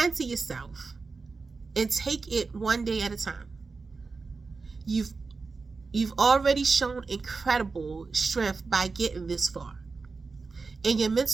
to yourself and take it one day at a time. You've already shown incredible strength by getting this far. And your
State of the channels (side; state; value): left; quieter; 4.3 dB